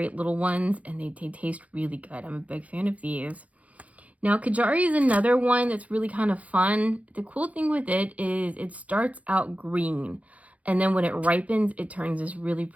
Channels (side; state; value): left; late; 0.068 ms